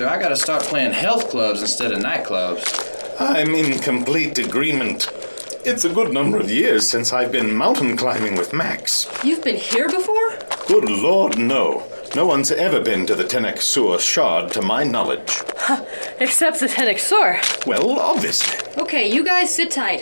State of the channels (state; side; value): inverted; both; correlation -1.00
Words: I gotta start playing health clubs instead of nightclubs. I'm in complete agreement. It's a good number of years since I've been mountain climbing with Max. You've been here before? Good Lord, no. No one's ever been to the Soor Shard, to my knowledge. Except the Soor. Well, obviously. Okay, you guys sit